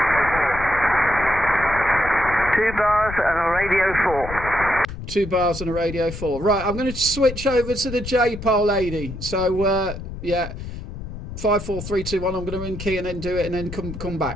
2 bars and a radio 4. 2 bars and a radio 4. Right, I'm going to switch over to the J-pole, lady. So, yeah, 5, 4, 3, 2, 1. I'm going to in key and then do it and then come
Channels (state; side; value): noise; left; rumble, 10 dB below the sound